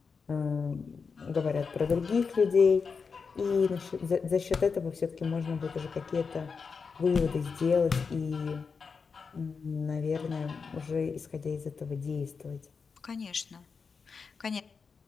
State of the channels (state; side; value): quieter; right; 5.3 dB